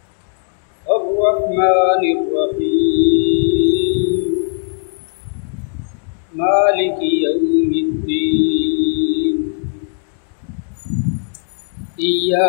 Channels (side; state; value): right; silent; digital silence